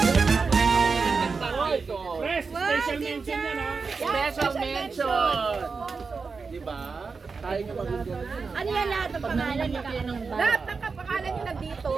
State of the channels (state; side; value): quieter; left; 4.8 dB